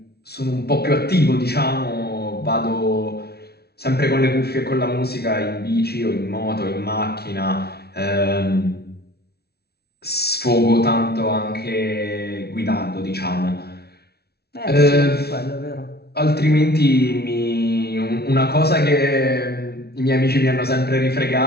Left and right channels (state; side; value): late; right; 0.46 ms